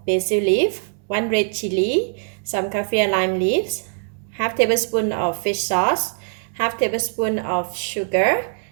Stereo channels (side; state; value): left; silent; digital silence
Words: basil leaf, 1 red chili, some Kaffir Lime Leaves, half tablespoon of fish sauce, half tablespoon of sugar,